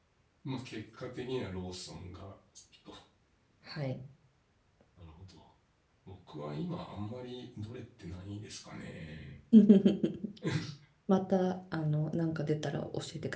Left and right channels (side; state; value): both; identical; correlation 1.00